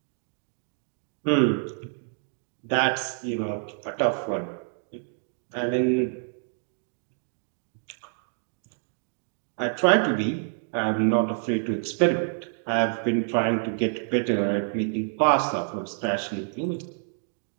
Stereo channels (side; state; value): left; silent; 60 dB below the other